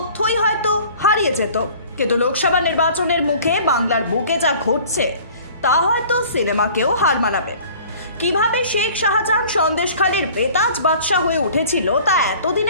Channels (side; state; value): both; inverted; correlation -0.48